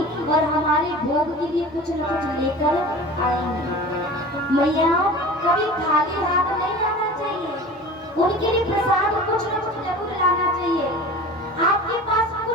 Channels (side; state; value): both; normal; correlation 0.37